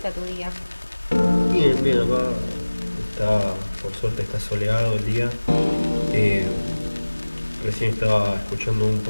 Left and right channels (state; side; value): inverted; both; correlation -1.00